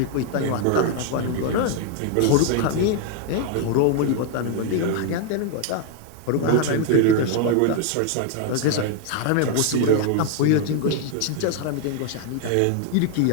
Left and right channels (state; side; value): different; both; correlation 0.00